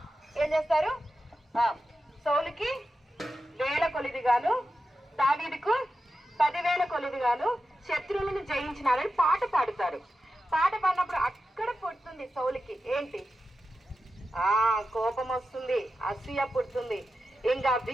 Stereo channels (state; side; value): normal; both; correlation 0.91